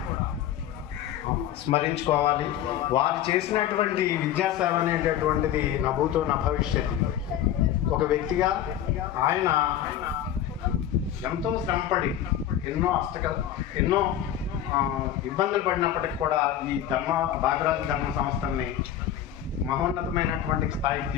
స్మరించుకోవాలి. వారు చేసినటువంటి విద్యాసేవ అనేటటువంటిది నా భూతో నా భవిష్యత్. ఒక వ్యక్తిగా ఆయన ఎంతో శ్రమపడి ఎన్నో ఇబ్బందులు పడినప్పటికీ కూడా ఈ భాగరాజు ధర్మ సంస్థల్ని మహోన్నతమైనటువంటి స్థాయికి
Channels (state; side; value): quieter; right; 10.9 dB